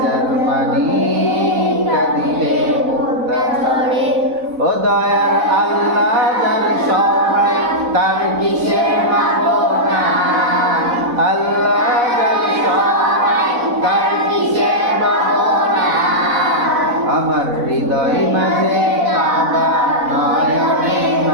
পানি কাঁদিলে মুক্তা ঝরে। ও দয়ার আল্লাহ যার সহায় তার কিসের ভাবনা, আল্লাহ যার সহায় তার কিসের ভাবনা। আমার হৃদয় মাঝে কাবা নয়নে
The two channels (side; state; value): left; late; 4.0 ms